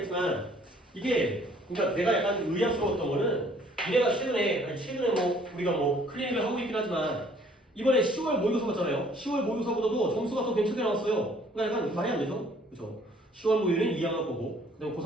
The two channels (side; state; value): both; normal; correlation 0.59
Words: 이게 그러니까 내가 약간 의아스러웠던 거는 니네가 최근에 뭐 우리가 뭐 클리닉을 하고 있긴 하지만 이번에 10월 모의고사 봤잖아요. 10월 모의고사보다도 점수가 더 괜찮게 나왔어요. 그러니까 약간 말이 안 되죠, 그렇죠? 10월 모의는 2학년 거고 그다음